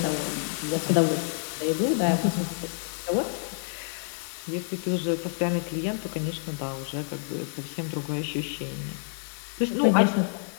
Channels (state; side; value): silent; right; 57 dB below the other